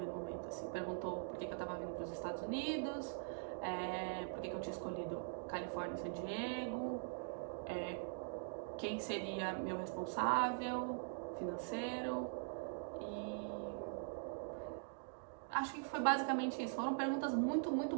momento, assim. Perguntou por que eu tava vindo para os Estados Unidos, por que eu tinha escolhido Califórnia e San Diego, quem seria meu responsável financeiro, e acho que foi basicamente isso. Foram perguntas muito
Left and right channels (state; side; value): silent; left; digital silence